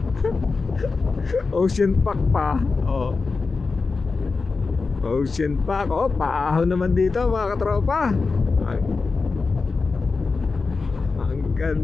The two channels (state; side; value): quieter; right; 4.3 dB